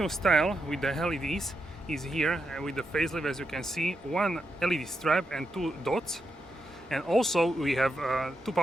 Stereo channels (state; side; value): normal; both; correlation 0.85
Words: style with the LEDs is here with the facelift. As you can see, one LED stripe and two dots, and also we have two